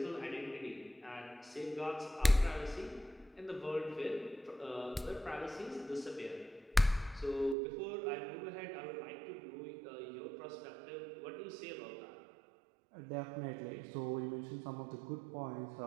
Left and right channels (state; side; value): drops out; left; at 7.6 s